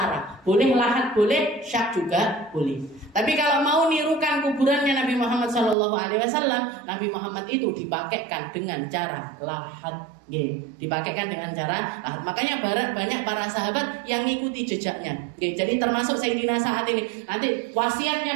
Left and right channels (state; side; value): drops out; left; at 5.8 s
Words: boleh lahat, boleh syak juga boleh. Tapi kalau mau nirukan kuburannya Nabi Muhammad SAW, Nabi Muhammad itu dipakaikan dengan cara lahat. Dipakaikan dengan cara lahat. Makanya banyak para sahabat yang ngikuti jejaknya. Jadi termasuk Sayyidina saat ini. Nanti